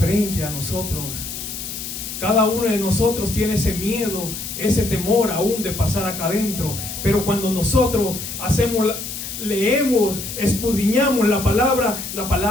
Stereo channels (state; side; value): noise; left; hiss, 7 dB below the sound